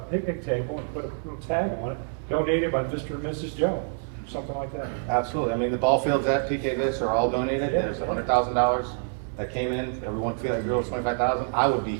table and put a little tag on it, donated by Mr. and Mrs. Jones, something like that. Absolutely. I mean, the ball fields at PK Viz are all donated. Yeah. There's $100,000 that came in, everyone feel like it was 25,000, I would be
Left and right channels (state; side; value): silent; left; digital silence